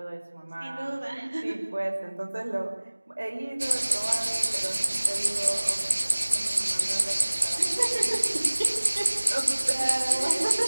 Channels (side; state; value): both; inverted; correlation -1.00